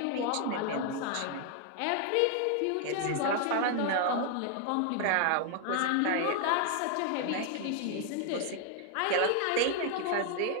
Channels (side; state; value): both; different; correlation 0.00